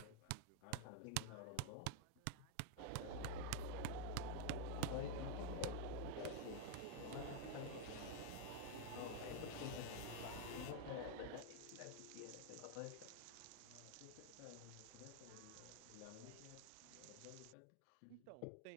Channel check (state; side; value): different; both; correlation -0.01